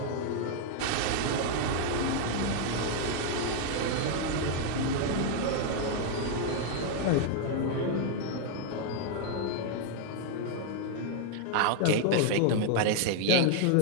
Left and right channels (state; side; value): different; both; correlation 0.00